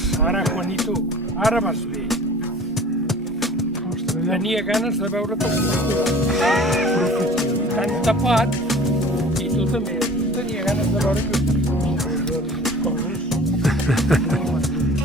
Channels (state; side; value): normal; both; correlation 0.45